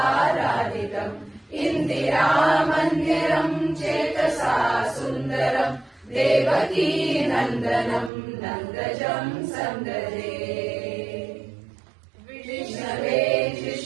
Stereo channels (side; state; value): left; drops out; at 8.1 s